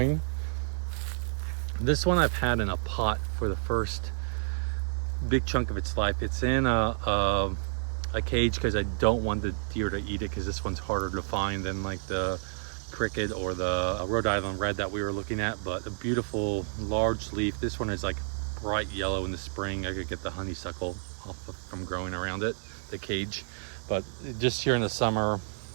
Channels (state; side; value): silent; left; digital silence